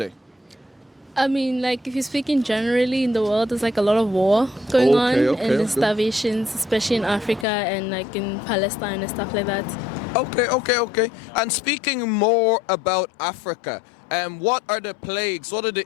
I mean, like, if you're speaking generally in the world, there's like a lot of war going on, and there's starvations, especially in Africa and like in Palestine and stuff like that. Okay. And speaking more about Africa, what are the plagues? What are the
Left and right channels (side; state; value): right; drops out; at 7.5 s